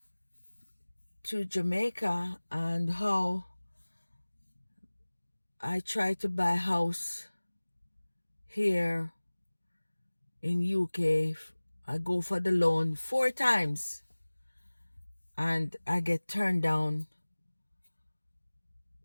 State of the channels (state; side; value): inverted; both; correlation -1.00